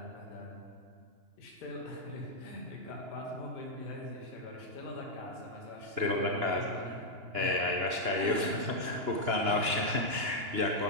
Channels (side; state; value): left; late; 2.9 ms